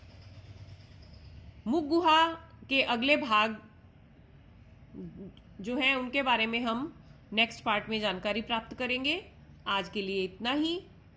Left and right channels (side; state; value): both; identical; correlation 1.00